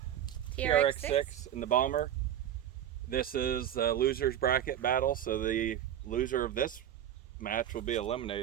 trx6 and the Bomber. This is a loser's bracket battle, so the loser of this match will be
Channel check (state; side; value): quieter; left; 10.8 dB